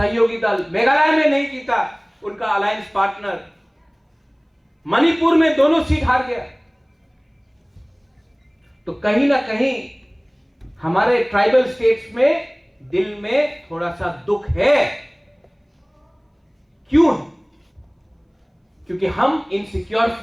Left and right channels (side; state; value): both; identical; correlation 1.00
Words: दल, मेघालय में नहीं जीता उनका अलायंस पार्टनर, मणिपुर में दोनों सीट हार गया। तो कहीं ना कहीं हमारे ट्राइबल स्टेट्स में दिल में थोड़ा सा दुख है। क्यों? क्योंकि हम इनसिक्योर